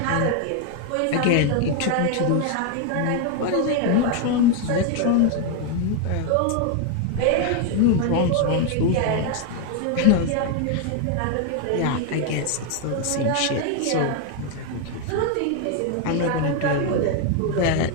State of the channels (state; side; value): different; both; correlation 0.01